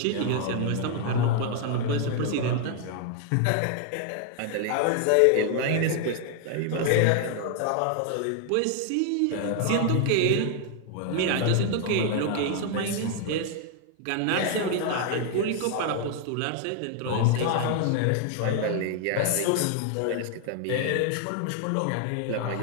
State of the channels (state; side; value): different; both; correlation 0.00